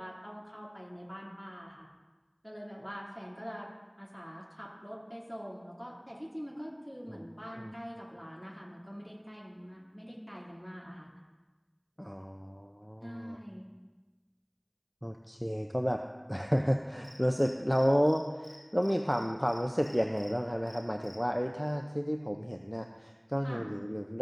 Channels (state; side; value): identical; both; correlation 1.00